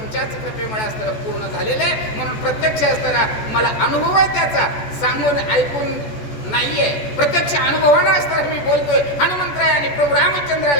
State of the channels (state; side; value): late; right; 14 ms